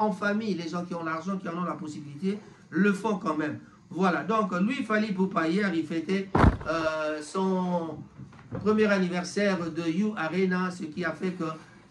famille. Les gens qui ont l'argent, qui en ont la possibilité, le font quand même. Voilà, donc lui, Fally Ipupa, hier, il fêtait son premier anniversaire de You Arena, ce qui a fait que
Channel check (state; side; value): identical; both; correlation 1.00